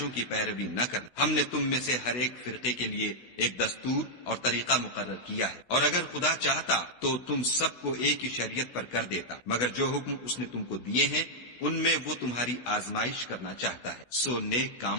کی پیروی نہ کرنا۔ ہم نے تم میں سے ہر ایک فرقے کے لیے ایک دستور اور طریقہ مقرر کیا ہے، اور اگر خدا چاہتا تو تم سب کو ایک ہی شریعت پر کر دیتا، مگر جو حکم اس نے تم کو دیے ہیں ان میں وہ تمہاری آزمائش کرنا چاہتا ہے۔ سو نیک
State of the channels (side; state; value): right; late; 16 ms